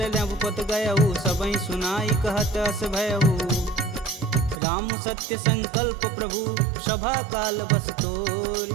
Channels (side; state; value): left; drops out; at 4.6 s